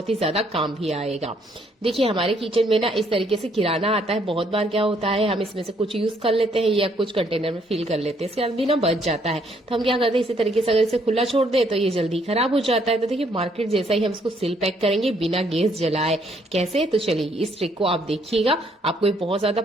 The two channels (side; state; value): both; normal; correlation 0.68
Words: ही ज्यादा काम भी आएगा। देखिए, हमारे किचन में ना इस तरीके से किराना आता है। बहुत बार क्या होता है, हम इसमें से कुछ यूज कर लेते हैं या कुछ कंटेनर में फिल कर लेते हैं, इसके बाद भी ना बच जाता है। तो हम क्या करते हैं, इसी तरीके से अगर इसे खुला छोड़ दे तो ये जल्दी खराब हो जाता है। तो देखिए, मार्केट जैसा ही हम इसको सील पैक करेंगे बिना गैस जलाए। कैसे? तो चलिए इस ट्रिक को आप देखिएगा, आपको ये बहुत ज्यादा